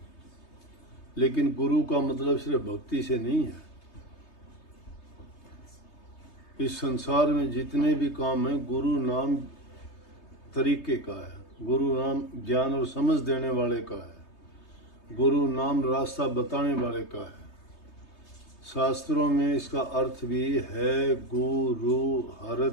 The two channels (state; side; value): late; right; 3.3 ms